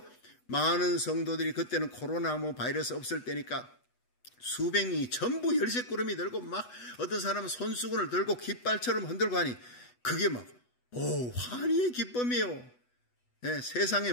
많은 성도들이, 그때는 코로나 바이러스 없을 때니까 수백 명이 전부 열쇠꾸러미 들고, 막 어떤 사람은 손수건을 들고 깃발처럼 흔들고 하니 그게 막 환희의 기쁨이에요. 세상에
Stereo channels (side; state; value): right; late; 8.2 ms